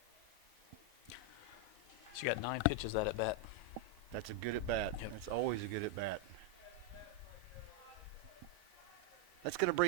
She got 9 pitches that at bat. That's a good at bat. Yep. That's always a good at bat. That's going to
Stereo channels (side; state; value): both; normal; correlation 0.01